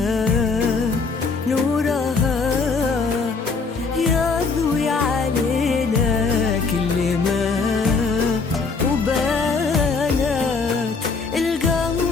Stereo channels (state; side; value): quieter; right; 4.5 dB